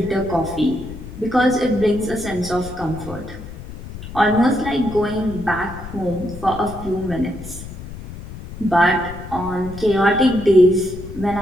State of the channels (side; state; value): left; noise; rumble, 12 dB below the sound